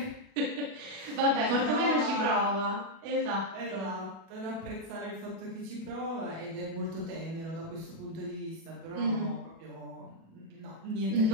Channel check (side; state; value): left; late; 37 ms